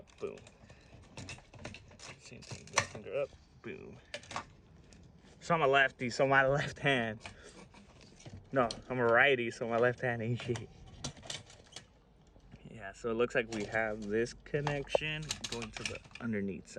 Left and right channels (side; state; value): both; identical; correlation 1.00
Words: boom. Same thing, middle finger up, boom. So I'm a lefty, so my left hand. No, I'm a righty, so my left hand ain't shit. Yeah, so it looks like we have this connection going to the underneath